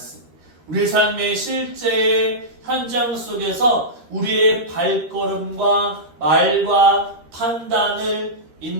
우리 삶의 실제 현장 속에서 우리의 발걸음과 말과 판단을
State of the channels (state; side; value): late; left; 13 ms